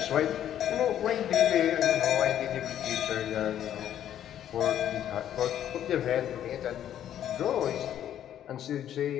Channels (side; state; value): right; quieter; 10.8 dB